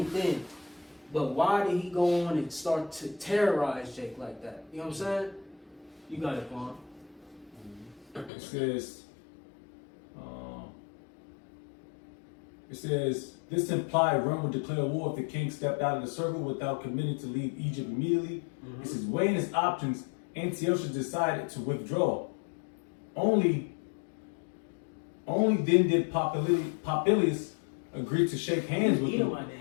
in. But why did he go on and start to terrorize Jake like that? You know what I'm saying? You got it, Quan. It says, this implied Rome would declare war if the king stepped out of the circle without committing to leave Egypt immediately. It says, weighing his options, Antiochus decided to withdraw. Only then did Popilius agree to shake hands with him. My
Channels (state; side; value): drops out; right; at 8.3 s